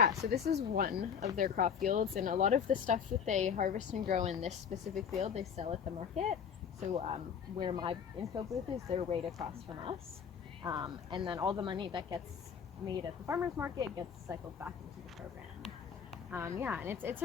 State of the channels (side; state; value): right; quieter; 7.2 dB